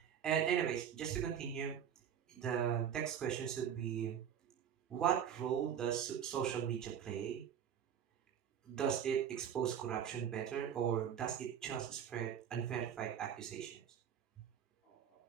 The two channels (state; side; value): quieter; left; 8.8 dB